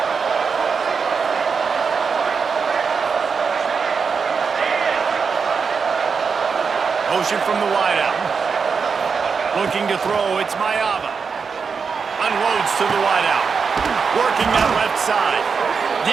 Motion from the wideout. Looking to throw, it's Mayama. Unloads to the wideout. Working that left side.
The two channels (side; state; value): left; quieter; 5.6 dB